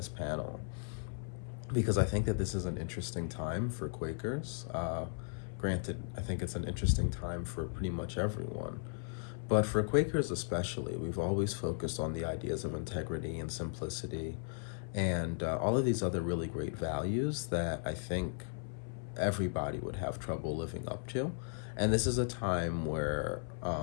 panel because I think that this is an interesting time for Quakers. Granted, I think it's an interesting time for pretty much everyone. But for Quakers especially, we've always focused on the ideas of integrity and simplicity and all of these other really great values that I think everybody would have trouble living up to. And this is a time where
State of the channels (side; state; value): right; silent; 54 dB below the other